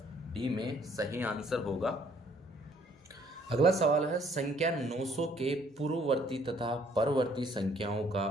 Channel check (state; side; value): normal; both; correlation 0.62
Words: डी में सही आंसर होगा। अगला सवाल है संख्या 900 के पूर्ववर्ती तथा परवर्ती संख्याओं